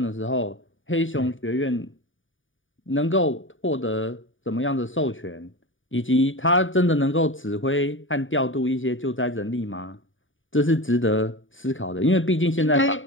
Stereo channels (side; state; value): right; late; 0.57 ms